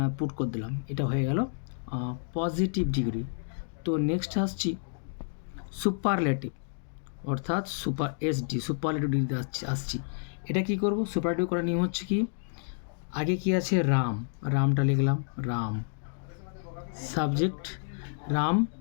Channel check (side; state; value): right; silent; digital silence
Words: পুট করে দিলাম। এটা হয়ে গেল পজিটিভ ডিগ্রি। তো নেক্সট আসছি সুপারলেটিভ, অর্থাৎ সুপারলেটিভ ডিগ্রিতে আসছি। এটা কি করব? সুপারলেটিভ করার নিয়ম হচ্ছে কি, আগে কি আছে? রামটা লিখলাম, রাম, সাবজেক্ট রাম